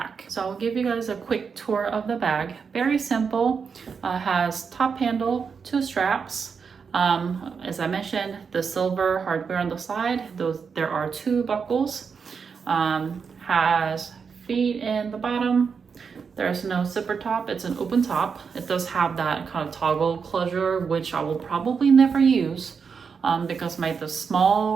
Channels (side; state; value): left; quieter; 5.9 dB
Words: So I'll give you guys a quick tour of the bag. Very simple. Has top handle, 2 straps. As I mentioned, the silver hardware on the side. There are 2 buckles. Has feet in the bottom. There's no zipper top, it's an open top. It does have that kind of toggle closure, which I will probably never use because the